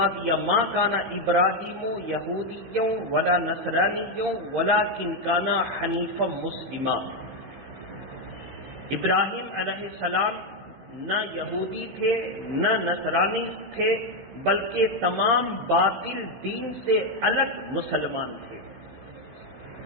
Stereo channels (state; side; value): late; left; 16 ms